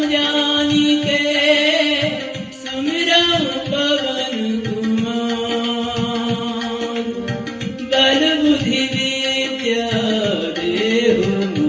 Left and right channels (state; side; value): identical; both; correlation 1.00